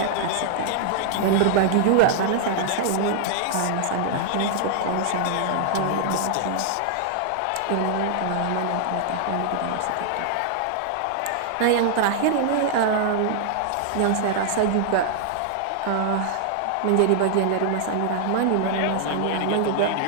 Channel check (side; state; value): both; different; correlation -0.01